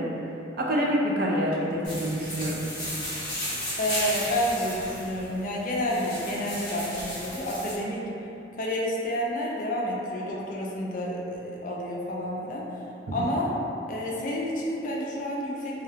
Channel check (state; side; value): normal; both; correlation 0.26